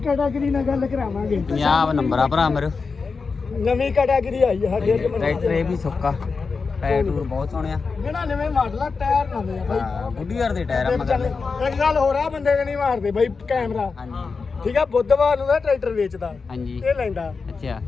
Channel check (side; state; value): right; quieter; 4.7 dB